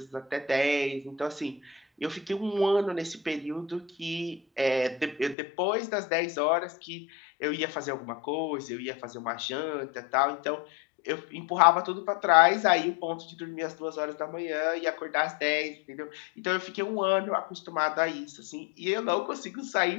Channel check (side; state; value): right; drops out; at 5.4 s